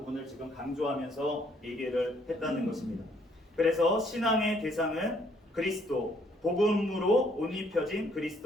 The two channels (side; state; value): both; normal; correlation 0.67